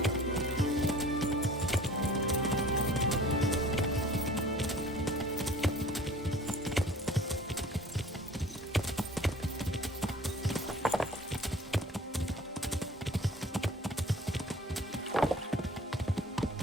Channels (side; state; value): both; normal; correlation 0.47